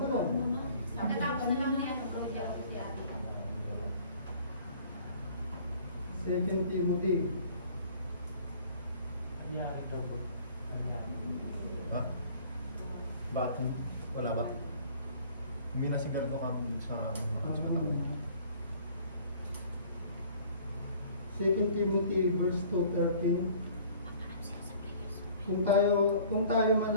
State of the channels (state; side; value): inverted; both; correlation -0.52